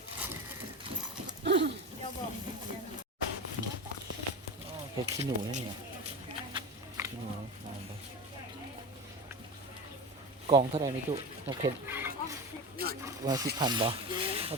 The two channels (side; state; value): both; normal; correlation 0.25